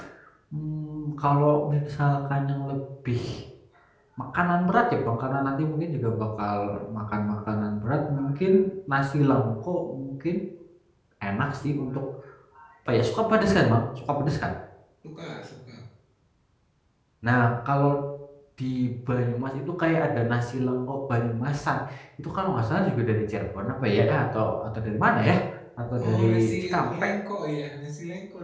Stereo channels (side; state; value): both; identical; correlation 1.00